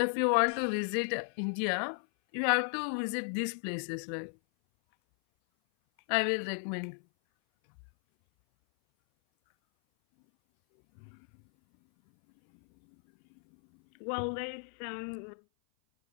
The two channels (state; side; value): silent; right; 55 dB below the other